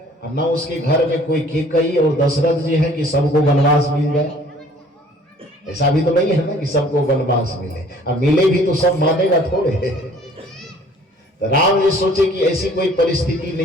और न उसके घर में कोई कैकेयी और दशरथ जी है कि सबको वनवास मिल जाए। ऐसा भी तो नहीं है ना कि सबको वनवास मिले, अब मिले भी तो सब मानेगा थोड़े। तो राम जी सोचे कि ऐसी कोई परिस्थिति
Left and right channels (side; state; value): both; normal; correlation 0.54